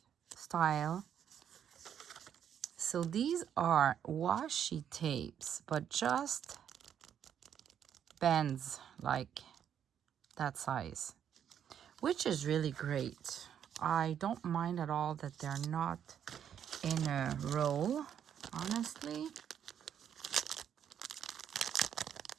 style. So these are washi tapes, but just bands like that size, which is really great. I don't mind at all that they're not in a roll, honestly.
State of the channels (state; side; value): quieter; left; 9.0 dB